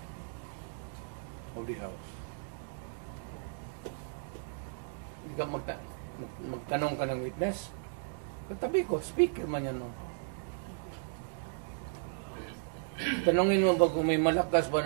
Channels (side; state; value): left; silent; digital silence